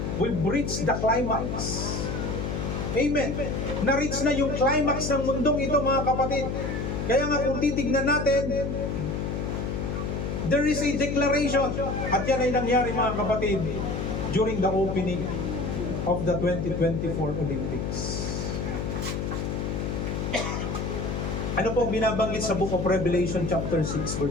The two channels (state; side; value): noise; left; hum, 2 dB below the sound